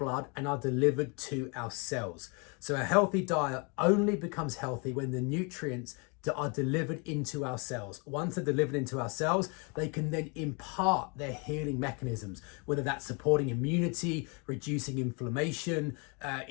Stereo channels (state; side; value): quieter; right; 33.1 dB